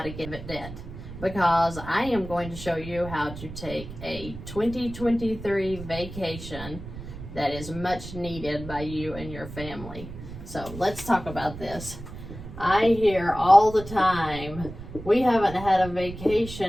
to get out of debt, because I am going to show you how to take a 2023 vacation that is much needed by you and your family. So let's talk about this. I hear all the time, we haven't had a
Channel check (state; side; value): noise; right; rumble, 12 dB below the sound